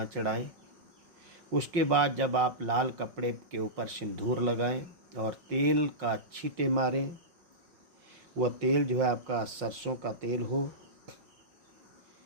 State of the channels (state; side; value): late; left; 5.6 ms